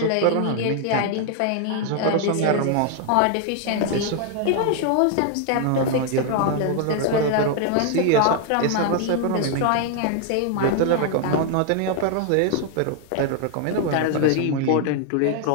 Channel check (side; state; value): both; different; correlation 0.00